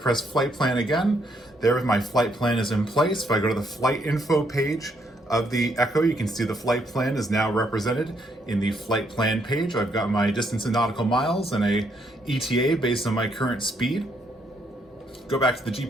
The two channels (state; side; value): normal; both; correlation 0.73